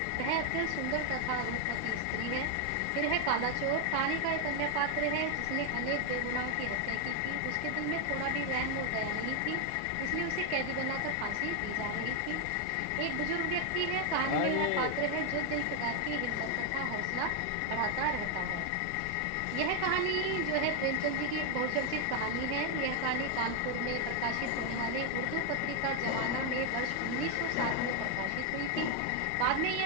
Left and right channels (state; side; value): different; both; correlation 0.00